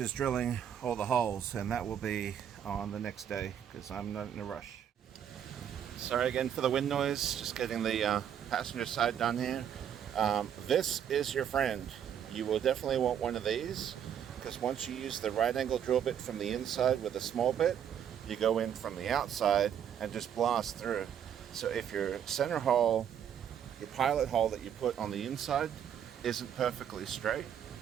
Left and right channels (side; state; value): left; quieter; 9.1 dB